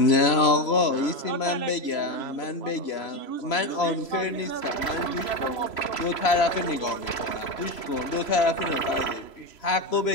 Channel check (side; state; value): right; late; 3.0 ms